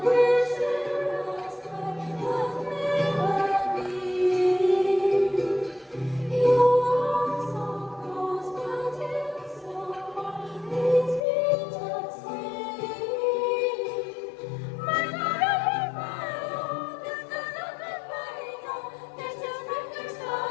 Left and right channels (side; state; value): right; drops out; at 11.2 s